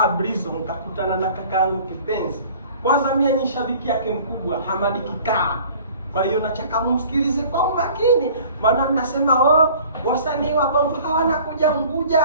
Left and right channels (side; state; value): both; inverted; correlation -0.49